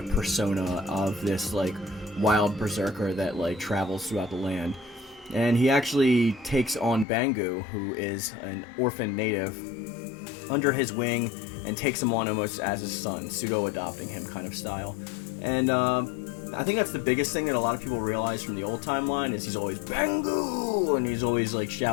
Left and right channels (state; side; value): drops out; right; at 7.1 s